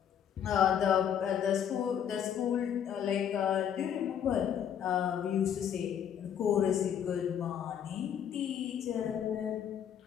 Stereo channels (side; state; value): right; quieter; 8.9 dB